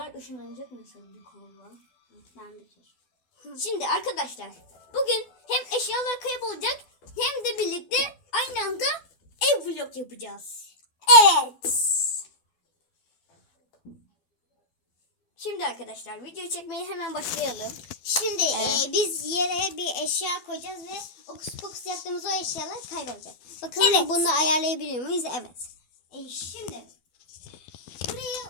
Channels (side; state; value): right; late; 12 ms